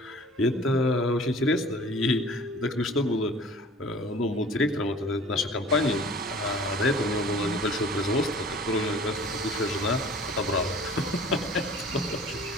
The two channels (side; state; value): both; normal; correlation 0.47